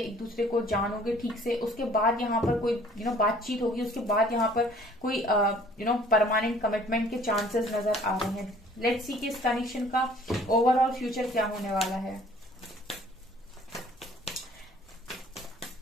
एक दूसरे को जानोगे ठीक से, उसके बाद यहाँ पर कोई बातचीत होगी, उसके बाद यहाँ पर कोई परमानेंट कमिटमेंट के चांसेस नजर आ रहे हैं। लेट्स सी कि इस कनेक्शन का ओवरऑल फ्यूचर क्या होने वाला है।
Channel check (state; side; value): normal; both; correlation 0.55